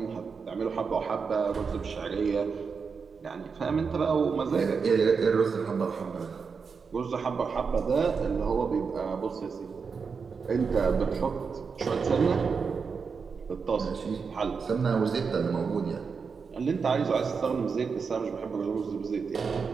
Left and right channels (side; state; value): left; quieter; 5.5 dB